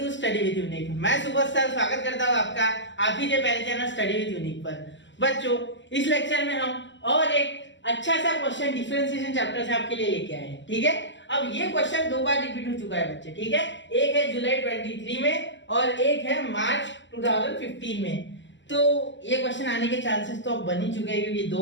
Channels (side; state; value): right; late; 0.54 ms